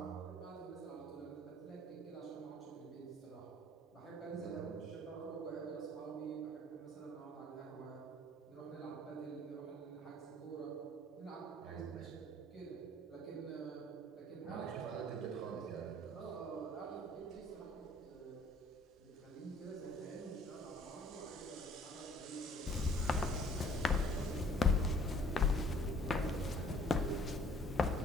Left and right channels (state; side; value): normal; both; correlation 0.56